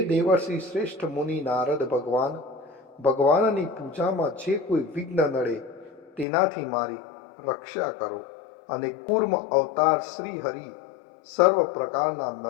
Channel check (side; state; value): right; drops out; at 6.2 s